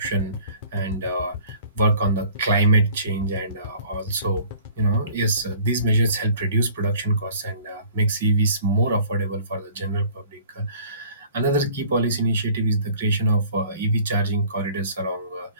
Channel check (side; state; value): both; inverted; correlation -0.51